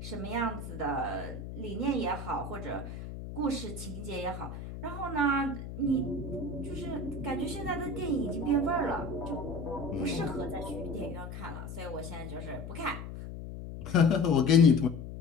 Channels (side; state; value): left; noise; hum, 9 dB below the sound